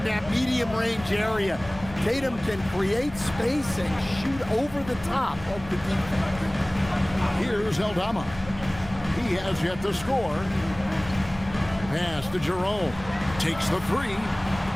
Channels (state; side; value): noise; left; rumble, 16 dB below the sound